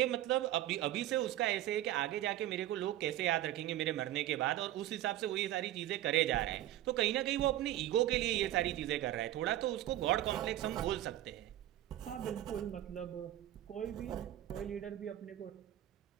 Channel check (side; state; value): left; quieter; 13.6 dB